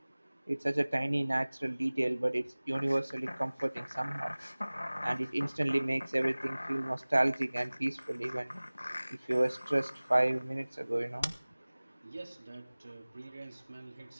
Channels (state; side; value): inverted; both; correlation -1.00